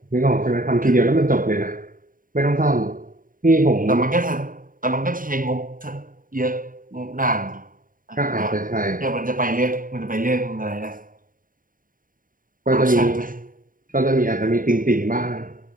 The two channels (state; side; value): late; left; 0.40 ms